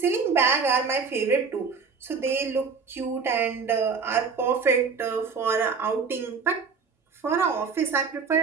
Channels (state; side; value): quieter; left; 5.3 dB